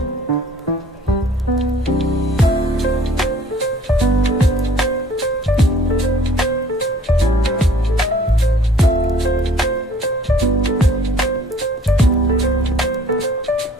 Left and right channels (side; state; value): both; normal; correlation 0.54